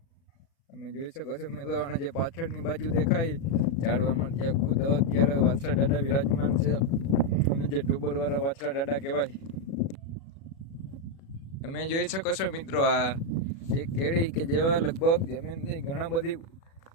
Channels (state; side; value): late; right; 36 ms